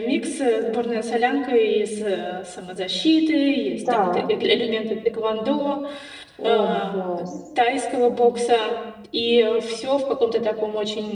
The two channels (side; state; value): both; identical; correlation 1.00